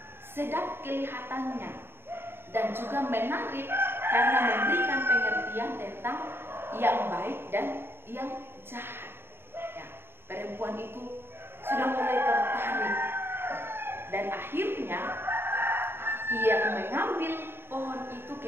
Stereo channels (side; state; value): left; late; 0.11 ms